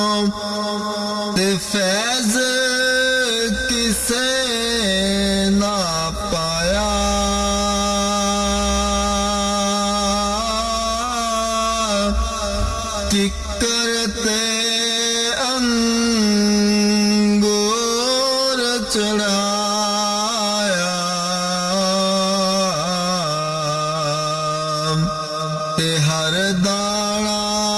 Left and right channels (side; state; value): both; identical; correlation 1.00